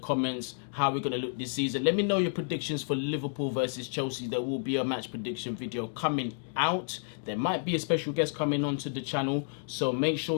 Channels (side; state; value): right; silent; digital silence